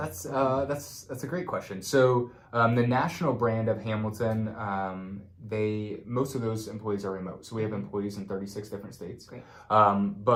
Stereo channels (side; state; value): both; identical; correlation 1.00